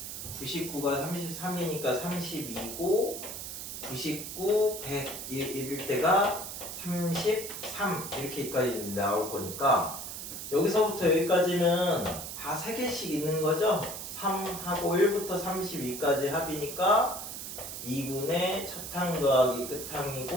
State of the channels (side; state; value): right; noise; hiss, 8 dB below the sound